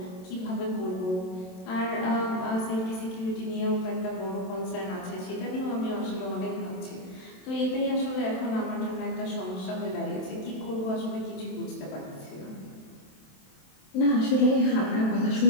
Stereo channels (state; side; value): late; right; 27 ms